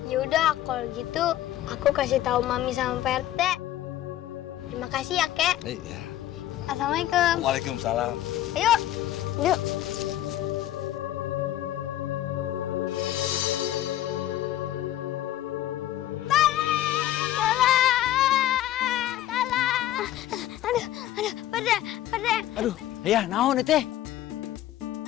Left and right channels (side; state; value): right; quieter; 13.4 dB